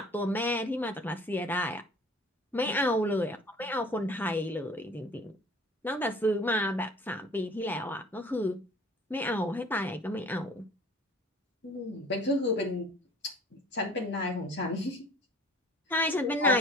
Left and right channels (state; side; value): normal; both; correlation 0.49